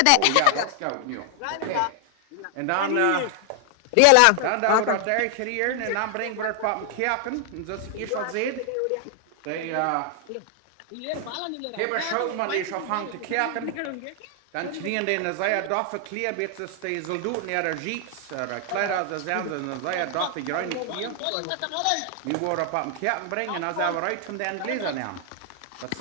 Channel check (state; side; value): different; both; correlation 0.00